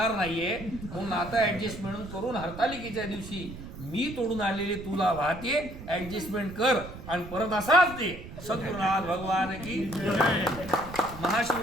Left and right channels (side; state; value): right; noise; rumble, 13 dB below the sound